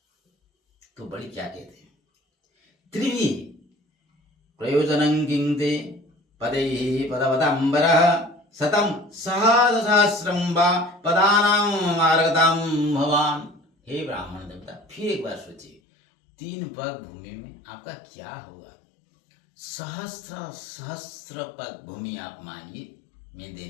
तो बड़ी क्या कहते हैं, त्रिवी प्रयोजनं किंते पदैहि पदवतांबरः शतं सहस्रं वा पदानां मार्गतां भवान। हे ब्राह्मण देवता, फिर एक बार सोचिए, 3 पग भूमि में आपका क्या होगा, सहस्त्र सहस्त्र पग भूमि आप मांगिए, मैं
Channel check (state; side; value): drops out; right; at 15.8 s